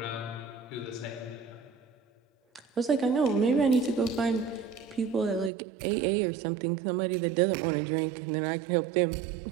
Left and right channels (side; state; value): left; drops out; at 5.5 s